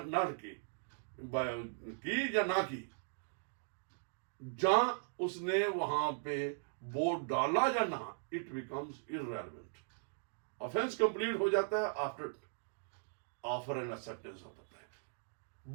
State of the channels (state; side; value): silent; left; digital silence